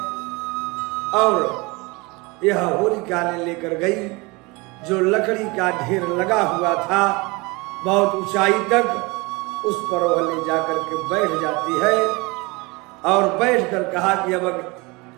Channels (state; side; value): quieter; left; 25.6 dB